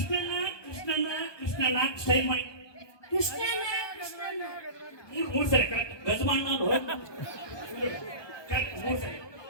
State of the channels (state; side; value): late; right; 1.2 ms